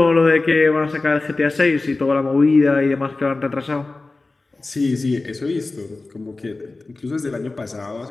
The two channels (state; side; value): quieter; right; 3.4 dB